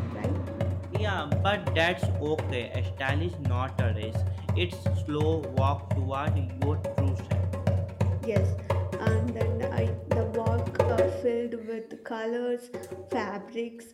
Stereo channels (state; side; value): identical; both; correlation 1.00